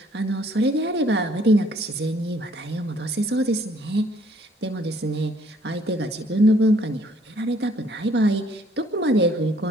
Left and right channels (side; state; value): both; normal; correlation 0.62